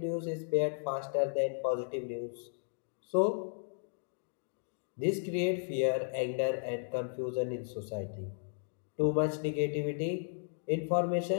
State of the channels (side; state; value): right; silent; digital silence